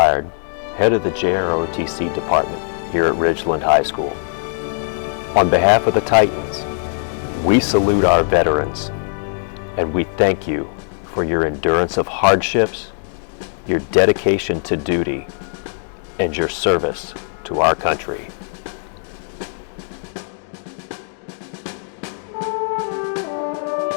head of the JROTC department here at Ridgeland High School. On behalf of the Titans, we salute our veterans, and we thank you for your endurance of hardships, your dedication to duty, and your service to our country.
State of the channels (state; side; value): silent; right; digital silence